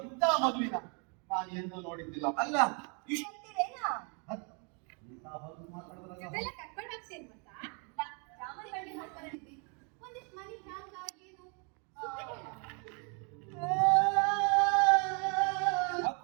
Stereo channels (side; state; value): left; quieter; 36.8 dB